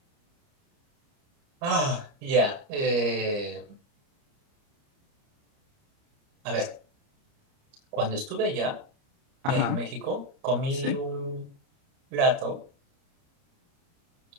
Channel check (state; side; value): late; left; 29 ms